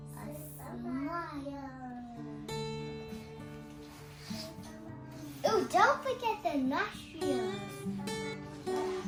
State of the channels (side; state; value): both; identical; correlation 1.00